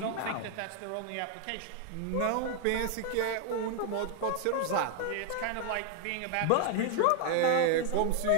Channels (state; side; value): different; both; correlation 0.01